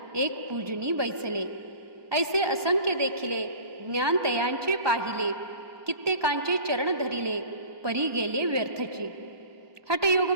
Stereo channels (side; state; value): left; late; 1.2 ms